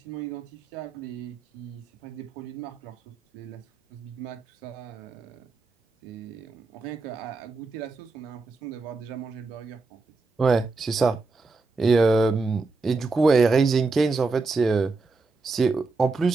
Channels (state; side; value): quieter; left; 3.8 dB